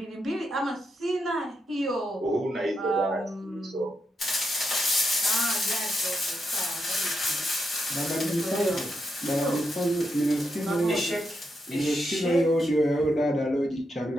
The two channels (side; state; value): both; normal; correlation 0.82